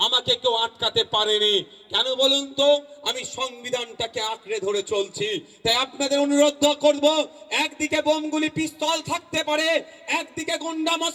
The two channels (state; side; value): identical; both; correlation 1.00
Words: আমাকে কেউ আটকাতে পারেনি। কেন বলুন তো? আমি সংবিধানটাকে আঁকড়ে ধরে চলছি। তাই আপনাদের অনুরোধ করব, একদিকে বোমগুলি পিস্তল থাকতে পারে, একদিকে গুন্ডা